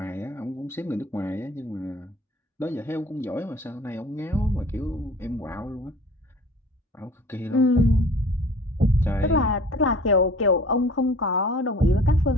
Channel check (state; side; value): normal; both; correlation 0.47